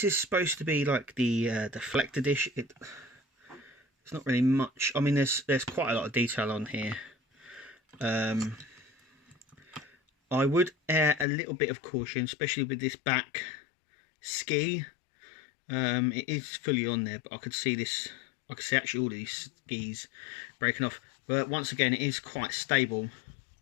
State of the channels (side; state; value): right; drops out; at 11.2 s